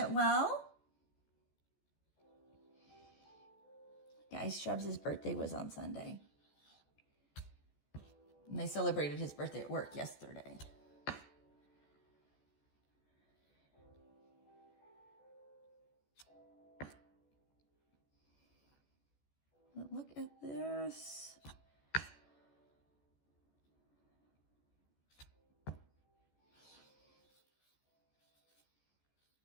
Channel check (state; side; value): late; right; 14 ms